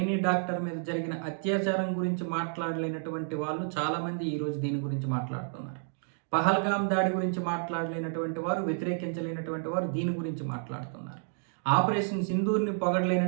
డాక్టర్ మీద జరిగిన అత్యాచారం గురించి మాట్లాడలేనటువంటి వాళ్ళు చాలామంది ఈరోజు దీని గురించి మాట్లాడుతున్నారు. పహల్గామ్ దాడి గురించి మాట్లాడలేనటువంటి వారు, వ్యతిరేకించలేనటువంటి వారు దీని గురించి మాట్లాడుతున్నారు. ఆపరేషన్ సింధూర్ని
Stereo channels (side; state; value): left; silent; digital silence